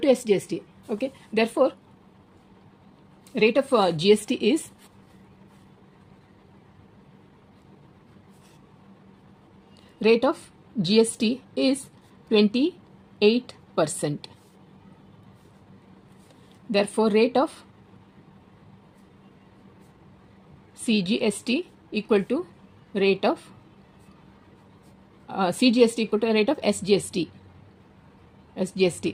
SGST. Okay. Therefore, rate of GST is rate of GST is 28%. Therefore, rate of CGST equal to rate of CGST equal to rate of SGST.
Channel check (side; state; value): both; identical; correlation 1.00